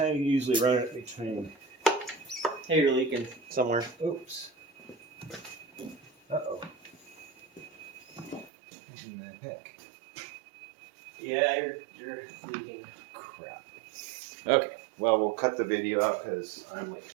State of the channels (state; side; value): drops out; left; at 8.5 s